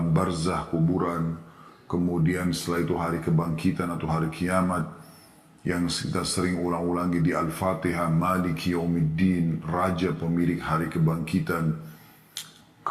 barzah, kuburan, kemudian setelah itu hari kebangkitan atau hari kiamat yang kita sering ulang-ulangi di Al-Fatihah, Maliki Yaumiddin, Raja pemilik hari kebangkitan.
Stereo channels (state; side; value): identical; both; correlation 1.00